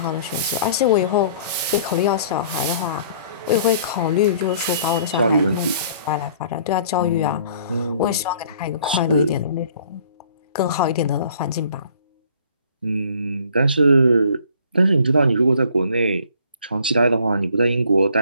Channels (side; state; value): both; inverted; correlation -0.55